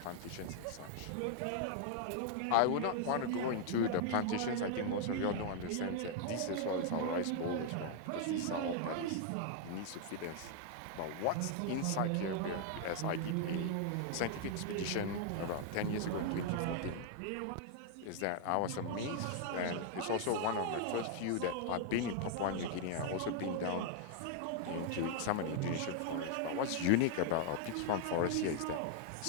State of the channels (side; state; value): both; different; correlation 0.00